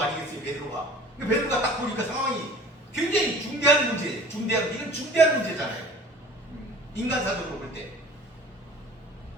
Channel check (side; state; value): both; normal; correlation 0.46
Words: 아니겠어요, 베드로가? 베드로가 딱 보니까 상황이 굉장히 중대한 문제, 이건 중대한 문제잖아요. 인간사적으로 볼 때.